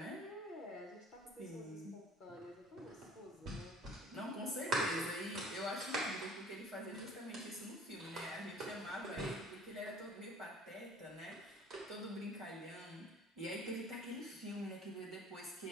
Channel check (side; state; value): both; normal; correlation 0.50